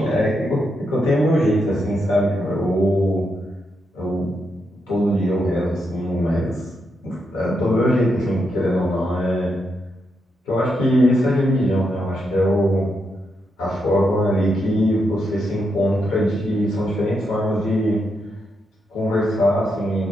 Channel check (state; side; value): normal; both; correlation 0.82